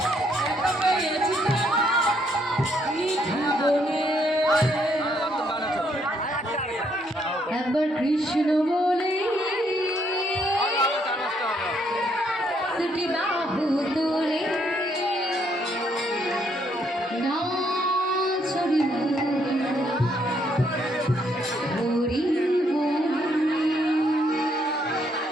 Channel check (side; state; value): both; normal; correlation 0.72